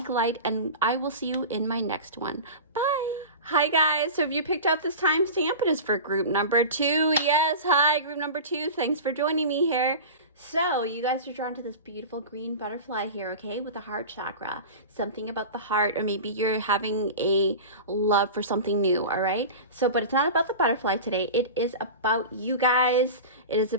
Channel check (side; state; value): both; inverted; correlation -0.30